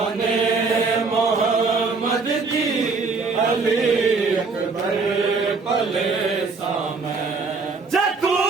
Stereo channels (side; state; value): left; quieter; 4.3 dB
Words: ने मोहम्मद दी अली अकबर पले सामे जतू